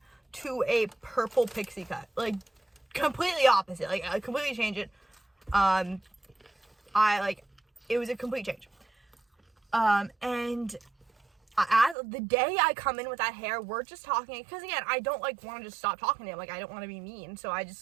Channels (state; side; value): drops out; left; at 12.0 s